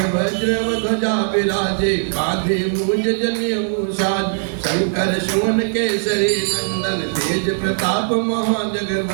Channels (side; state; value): left; silent; digital silence